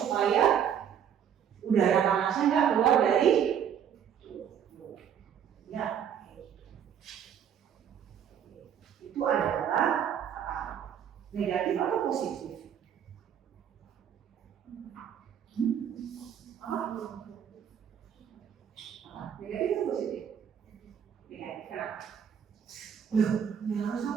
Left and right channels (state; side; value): quieter; left; 8.7 dB